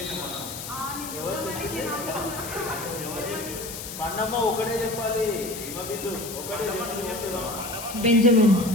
ఎవరు చెప్పింది? పండమ్మ ఒకటే చెప్పాలి. హిమబిందు ఒకటే చేసి చెప్తున్నా. బెంజమిన్.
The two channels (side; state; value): left; noise; hiss, 9 dB below the sound